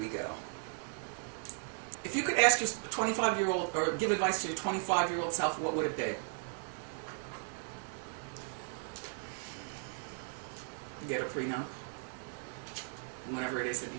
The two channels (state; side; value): silent; left; 54 dB below the other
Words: go. If you could ask your 25-year-old, or give advice to your 25-year-old self, what would it be? Get a prenup. Whenever it is that you